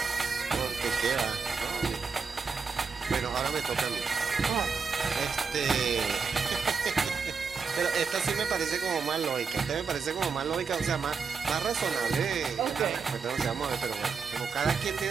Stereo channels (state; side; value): quieter; left; 5.4 dB